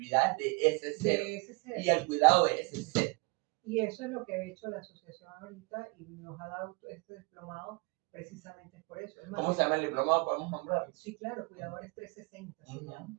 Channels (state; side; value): quieter; left; 28.5 dB